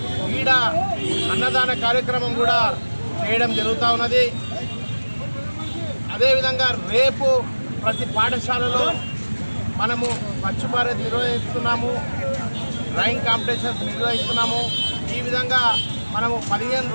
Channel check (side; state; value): both; inverted; correlation -1.00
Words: ఈడ అన్నదాన కార్యక్రమం కూడా చేయడం జరుగుతూ ఉన్నది. అదేవిధంగా రేపు ప్రతి పాఠశాలలో మనము స్వచ్ఛ భారత్ నిర్వహిస్తున్నాము, డ్రాయింగ్ కాంపిటీషన్స్ నిర్వహిస్తున్నాము. ఈ విధంగా మనము 15